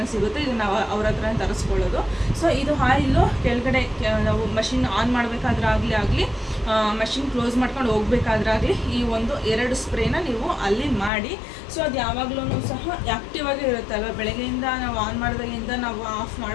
ಸಿಗುತ್ತೆ, ಇದು ನಾವು ಅವ್ರ ಹತ್ರನೇ ತರಿಸ್ಕೊಳ್ಳೋದು. ಸೊ ಇದು ಆಯಿಲು ಕೆಳಗಡೆ ನಾವು ಮಷಿನ್ ಆನ್ ಮಾಡಬೇಕಾದ್ರೆ ಆಗಲಿ ಮಷಿನ್ ಕ್ಲೋಸ್ ಮಾಡ್ಕೊಂಡು ಹೋಗ್ಬೇಕಾದ್ರಾಗಲಿ ಈ 2 ಸ್ಪ್ರೇನ ನೀವು ಅಲ್ಲಿ ಮಾಡಿ. ಸೊ ಅದು ಯಾವಾಗಲೂ ಸಹ ಆ್ಯಕ್ಟಿವ್ ಆಗೇ ಇರುತ್ತೆ ಅಲ್ವಾ, ಬೆಳಗ್ಗೆಯಿಂದ ನಾವು ಆನ್ ಮಾಡಿದಾಗಿಂದ ನಾವು ಆಫ್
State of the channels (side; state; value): right; drops out; at 11.1 s